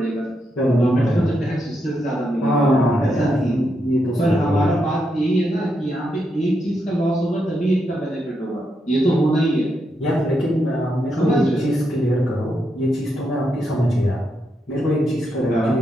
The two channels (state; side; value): normal; both; correlation 0.82